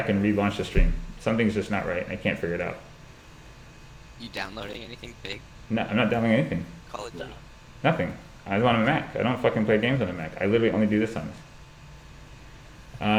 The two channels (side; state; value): both; identical; correlation 1.00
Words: and relaunch the stream. Something's just not right and I can't figure it out. You downloading anything big? No, I'm not downloading anything. Call of Duty. Nothing. I was on a Mac. I don't fucking play games on a Mac. I literally only do this on this.